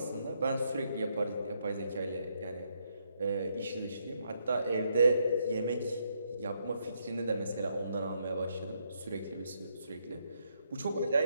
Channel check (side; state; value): both; inverted; correlation -0.76